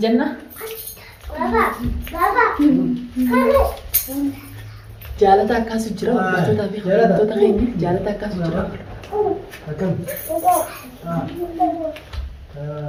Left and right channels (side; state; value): both; identical; correlation 1.00